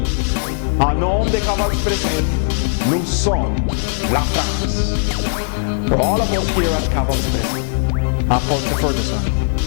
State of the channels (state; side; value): silent; right; digital silence